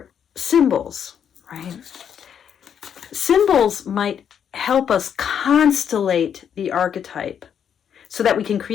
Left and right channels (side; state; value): right; quieter; 8.3 dB